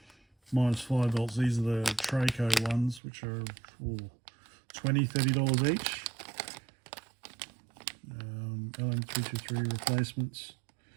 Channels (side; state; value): left; drops out; at 3.0 s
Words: minus 5 volts. These are the Traco ones, which are $20, $30 each. LM323 replacements.